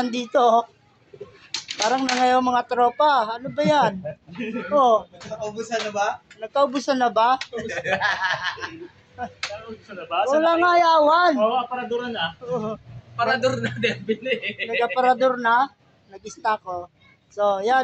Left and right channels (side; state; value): both; identical; correlation 1.00